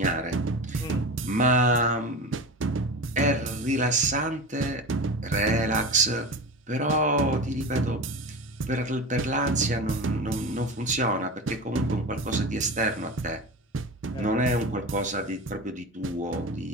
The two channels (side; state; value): both; normal; correlation 0.27